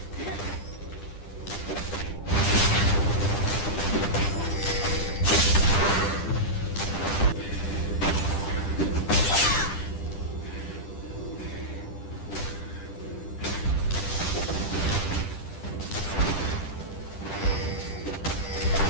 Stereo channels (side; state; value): right; late; 10 ms